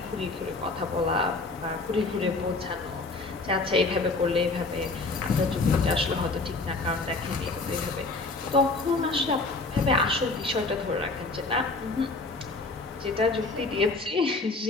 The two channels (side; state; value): right; quieter; 3.5 dB